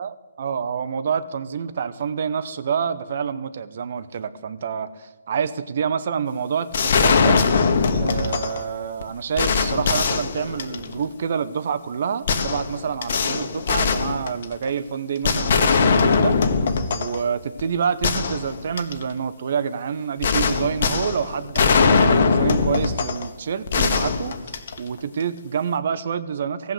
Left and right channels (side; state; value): both; inverted; correlation -0.69